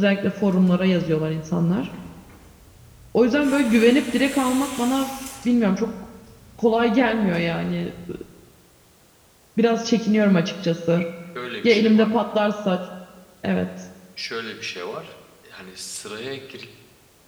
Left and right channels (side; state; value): both; identical; correlation 1.00